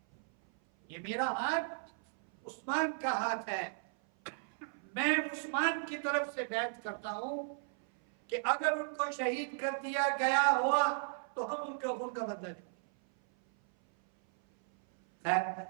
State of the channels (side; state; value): left; silent; 54 dB below the other